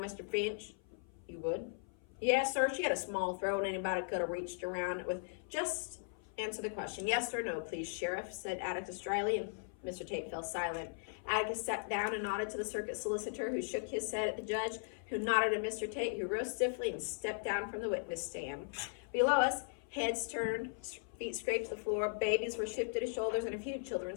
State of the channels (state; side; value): silent; right; 52 dB below the other